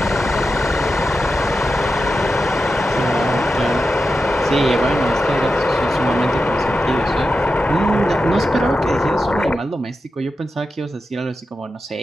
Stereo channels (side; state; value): both; normal; correlation 0.90